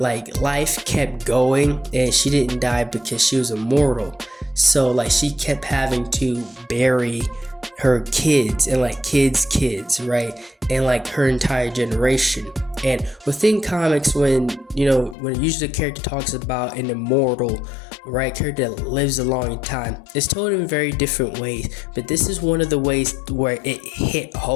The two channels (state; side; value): drops out; right; at 15.2 s